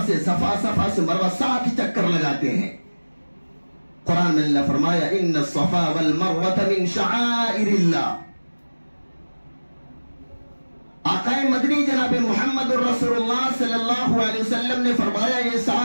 سے صفا، صفا سے مروہ، 7 چکر لگاتے ہیں۔ قرآن میں اللہ فرمایا ان الصفا والمروہ من شعائر اللہ۔ آقا مدنی جناب محمد الرسول اللہ صلی اللہ علیہ وسلم نے فرمایا یہ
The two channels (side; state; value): both; inverted; correlation -1.00